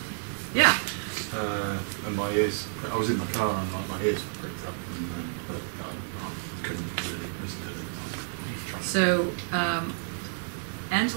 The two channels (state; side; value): silent; left; digital silence